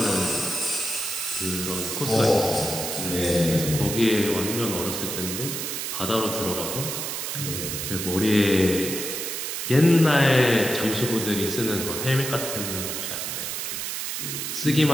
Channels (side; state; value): right; noise; hiss, 4 dB below the sound